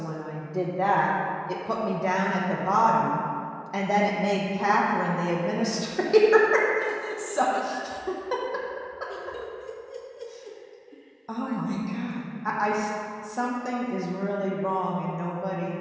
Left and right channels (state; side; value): identical; both; correlation 1.00